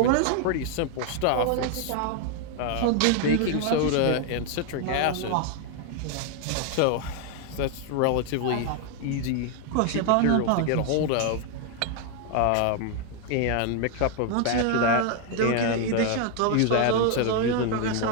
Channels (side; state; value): both; different; correlation 0.01